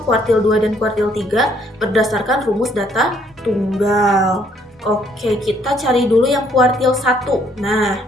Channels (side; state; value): both; normal; correlation 0.66